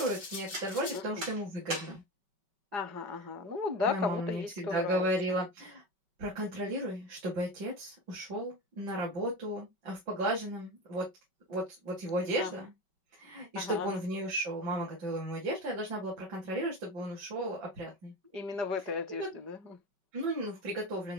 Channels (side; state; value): left; late; 5.3 ms